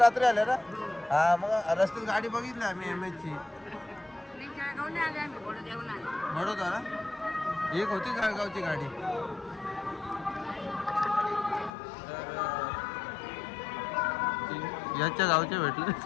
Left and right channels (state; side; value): drops out; right; at 11.7 s